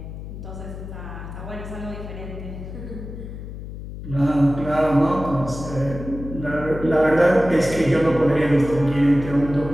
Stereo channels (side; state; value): left; noise; hum, 10 dB below the sound